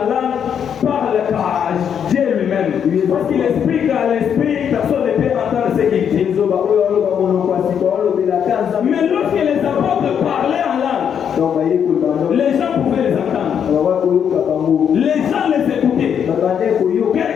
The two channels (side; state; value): right; quieter; 8.1 dB